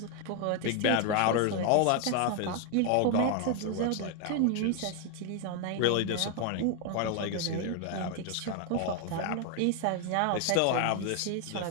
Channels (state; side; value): different; both; correlation 0.01